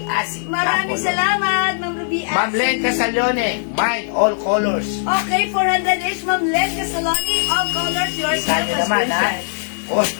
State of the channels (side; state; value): right; silent; digital silence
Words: Asi. Maraming Apple. salamat, Ma'am Ruby Asi. Ma'am Len Casalone, Mine All Colors. Okay, 400 each, Ma'am Len Casaloni, all colors, yours na, Kanya naman, ha? subscription.